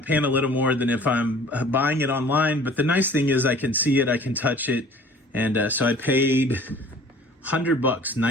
a little more than if I'm buying it online. But the nice thing is I can see it, I can touch it. And so I paid $100,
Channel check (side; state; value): both; normal; correlation 0.49